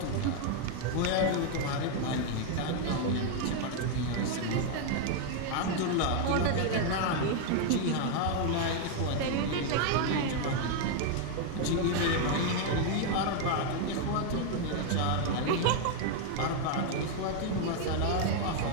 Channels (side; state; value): both; different; correlation 0.00